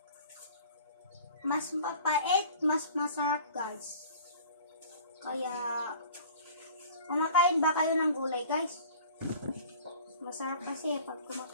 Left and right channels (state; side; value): inverted; both; correlation -0.46